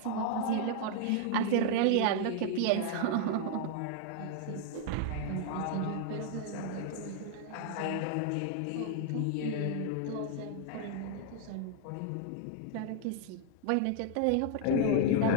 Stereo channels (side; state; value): both; different; correlation 0.00